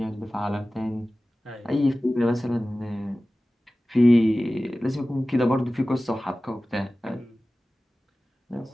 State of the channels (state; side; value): normal; both; correlation 0.97